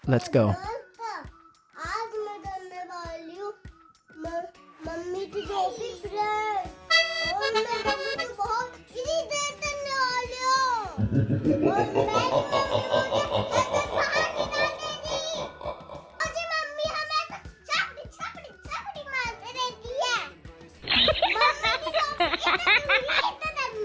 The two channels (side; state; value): both; identical; correlation 1.00